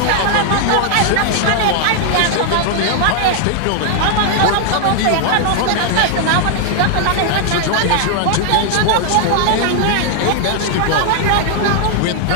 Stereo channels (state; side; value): different; both; correlation 0.00